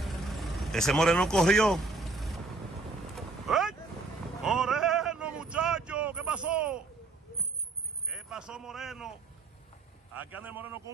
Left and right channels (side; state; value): left; quieter; 3.5 dB